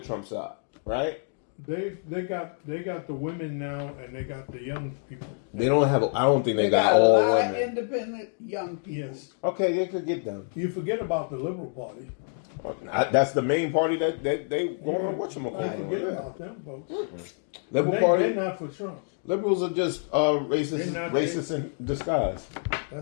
side, right? They got the women now, and they got the young people. They don't have. I don't think they got a all lot women. of independent young people. Yes. Okay, they could get them. You forget about the Liberal Party. That's the main party that they going on. Forget about them folks. Mm-hmm. Liberal Party. They're not for Trump. Liberals are just racist in disguise.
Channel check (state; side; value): silent; right; 60 dB below the other